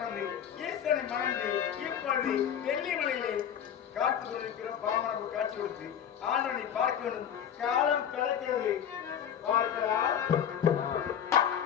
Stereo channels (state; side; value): quieter; right; 8.8 dB